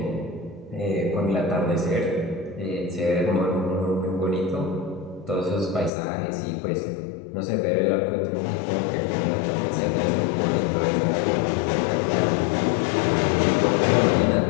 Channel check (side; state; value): right; drops out; at 5.9 s